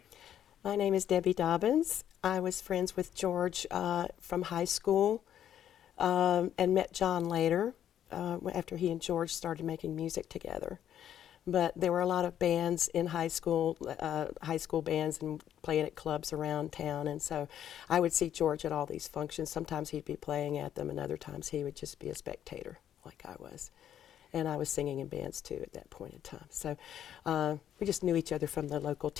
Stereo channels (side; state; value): right; quieter; 10.3 dB